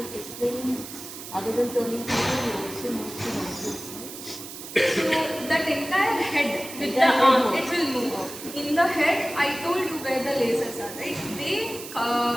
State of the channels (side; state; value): right; noise; hiss, 12 dB below the sound